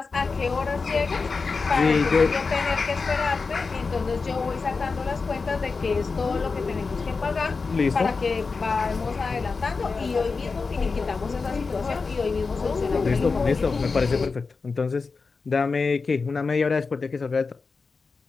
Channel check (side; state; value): right; quieter; 4.5 dB